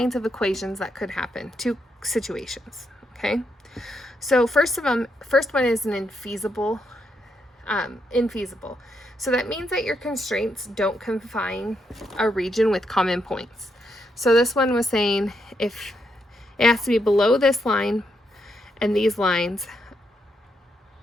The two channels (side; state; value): both; normal; correlation 0.80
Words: of equations that could happen. 2 situations. Okay. So first one is an infeasible. So that means that your constraints don't confine a region with common points. So this one was saying if it has to be below this line and these lines.